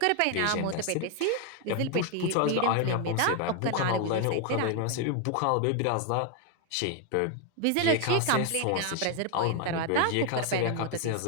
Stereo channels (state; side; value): different; both; correlation 0.01